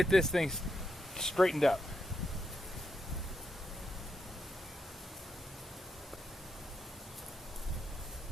this thing straightened up.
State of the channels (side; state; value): both; normal; correlation 0.83